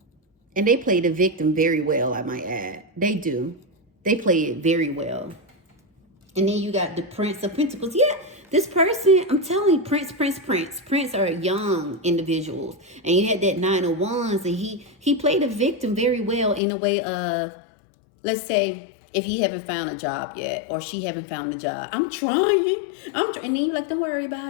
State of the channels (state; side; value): drops out; right; at 16.6 s